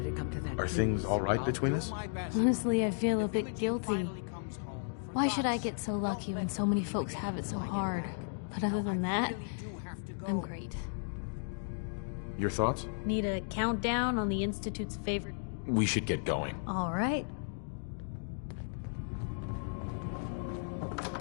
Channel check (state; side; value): silent; right; digital silence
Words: it come to that. Are things all right between us? Honestly, I feel a bit guilty. Why should I get so lucky when so many folks have it so hard? But other than that, I'm great. Your thoughts? Need a countdown on the Institute's favorite? We should get going. All right.